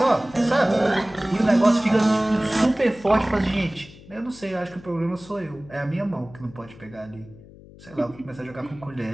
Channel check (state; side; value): noise; left; hum, 21 dB below the sound